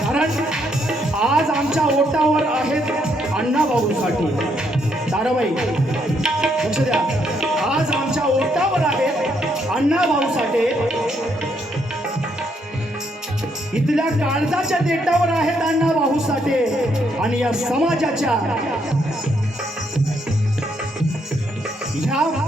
कारण आज आमच्या ओटावर आहेत अण्णाभाऊंसाठी. ताराबाई लक्ष द्या, आज आमच्या ओटावर आहेत अण्णाभाऊसाठी, इथल्या काळजाच्या देटावर आहेत अण्णाभाऊसाठी आणि या समाजाच्या ह्या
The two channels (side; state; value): both; normal; correlation 0.74